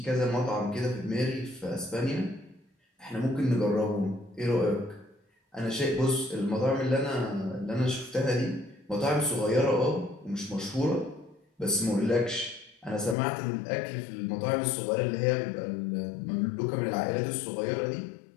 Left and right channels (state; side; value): drops out; right; at 13.2 s